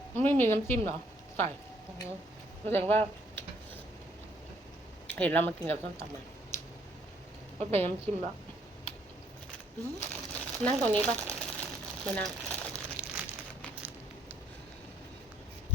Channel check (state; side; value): normal; both; correlation 0.68